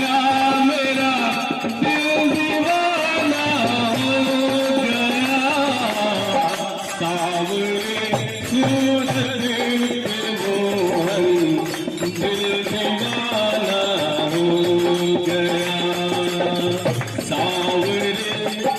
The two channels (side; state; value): both; identical; correlation 1.00